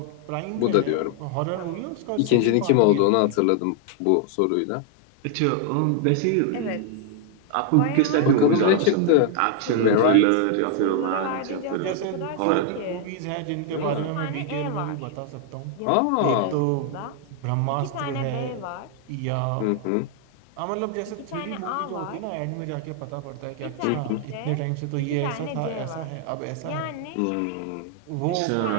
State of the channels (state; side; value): different; both; correlation 0.00